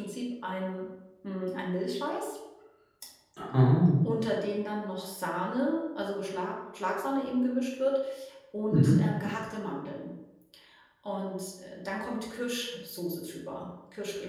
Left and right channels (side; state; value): both; identical; correlation 1.00